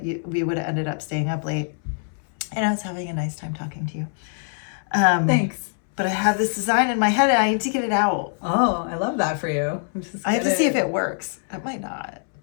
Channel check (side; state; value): right; silent; 63 dB below the other